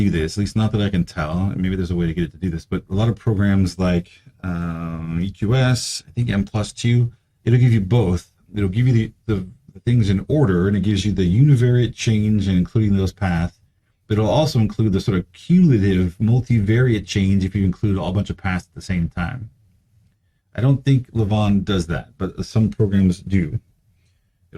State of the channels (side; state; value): both; identical; correlation 1.00